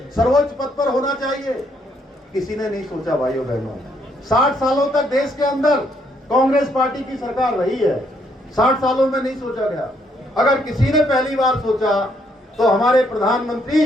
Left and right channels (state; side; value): normal; both; correlation 0.71